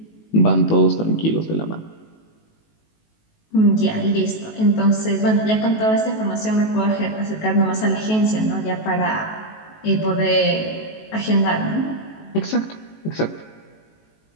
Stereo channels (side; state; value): right; late; 19 ms